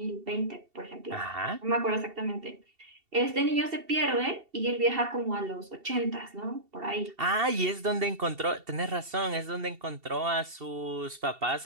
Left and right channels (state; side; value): late; left; 2.7 ms